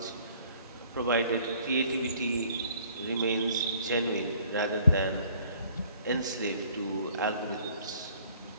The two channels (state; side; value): inverted; both; correlation -0.57